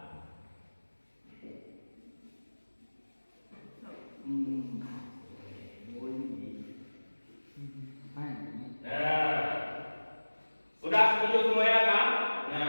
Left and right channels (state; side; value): inverted; both; correlation -1.00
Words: Nah, sudah setuju semuanya kan?